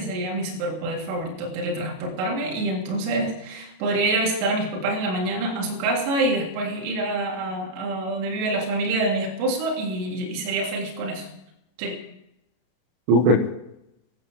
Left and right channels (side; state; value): left; late; 32 ms